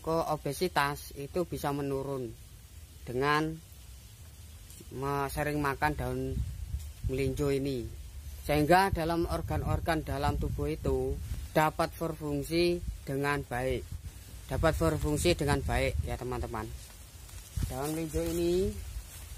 obesitas itu bisa menurun dengan sering makan daun melinjo ini. Sehingga dalam organ-organ dalam tubuh itu dapat berfungsi dengan baik. Dapat berfungsi dengan baik ya teman-teman. Daun melinjo ini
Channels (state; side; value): identical; both; correlation 1.00